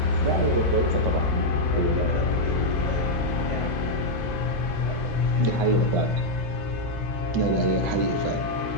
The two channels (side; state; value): right; late; 1.4 ms